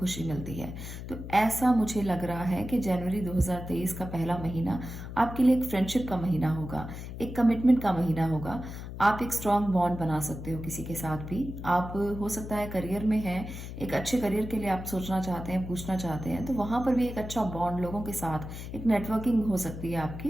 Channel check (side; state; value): left; noise; hum, 9 dB below the sound